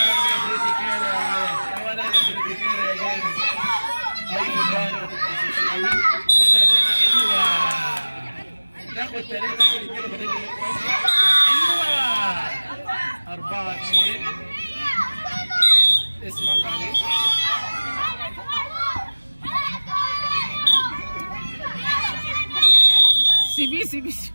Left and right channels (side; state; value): both; inverted; correlation -1.00